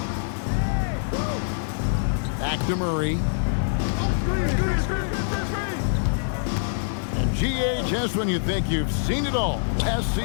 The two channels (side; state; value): right; silent; digital silence